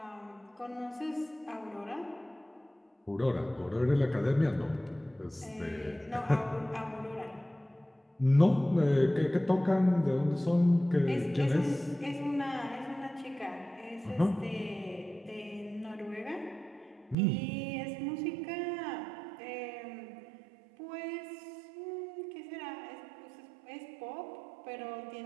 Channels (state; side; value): drops out; left; at 17.2 s